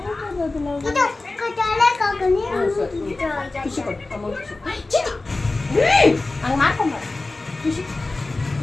ಖುಷಿ ಕೊಟ್ಟು ಹಂಗೆ ಮಾಡ್ಕೊಂಬ. ಖುಷಿ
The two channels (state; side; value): quieter; right; 3.2 dB